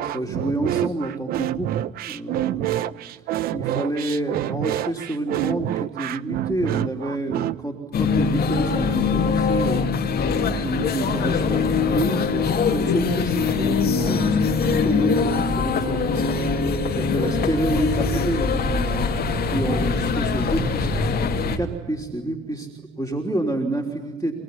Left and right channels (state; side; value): normal; both; correlation 0.48